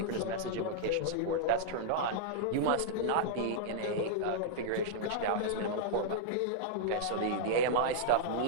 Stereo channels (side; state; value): both; different; correlation -0.01